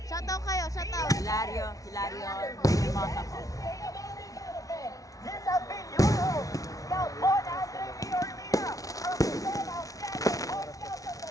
Shoutout kayo, shoutout. Hilario, Hermosa po. This has been your host, Scout Paul Andre Viormina, represent outstanding Boy Scouts of the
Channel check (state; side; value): late; right; 0.17 ms